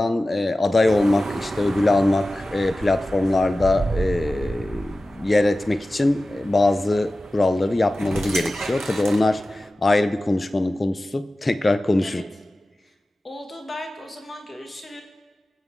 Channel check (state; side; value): normal; both; correlation 0.95